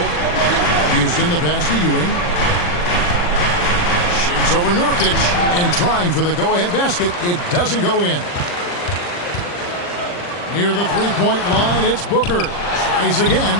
Houston the pass to Ewing. Shoots over Nurkic and trying for the go-ahead basket. It doesn't go in. Near the three-point line, it's Booker. Tries again,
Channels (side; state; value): right; late; 40 ms